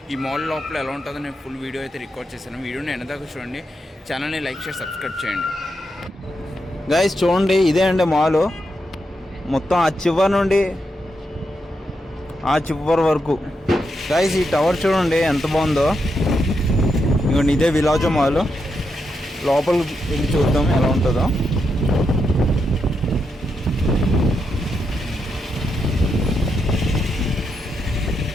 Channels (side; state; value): both; normal; correlation 0.83